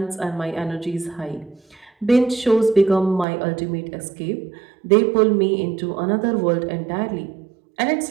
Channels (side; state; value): left; drops out; at 3.2 s